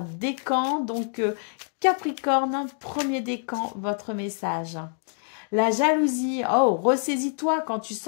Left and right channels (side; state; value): right; silent; 61 dB below the other